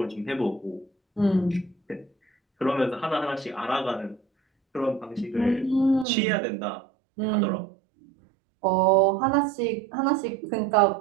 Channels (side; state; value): left; drops out; at 6.1 s